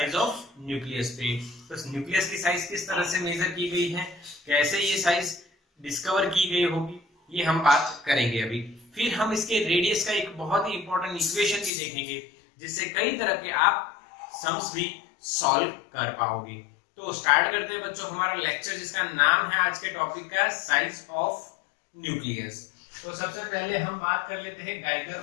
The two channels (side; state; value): right; drops out; at 11.7 s